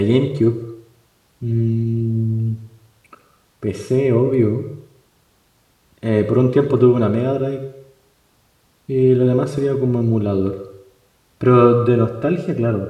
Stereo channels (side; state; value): both; identical; correlation 1.00